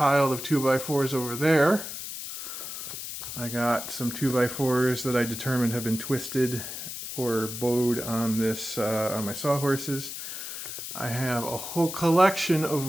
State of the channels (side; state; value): left; noise; hiss, 8 dB below the sound